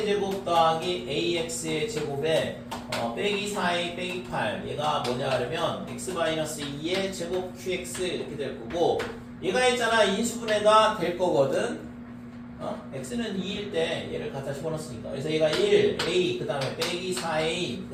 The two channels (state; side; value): identical; both; correlation 1.00